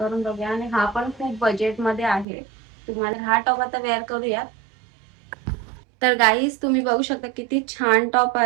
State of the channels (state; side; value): drops out; left; at 2.2 s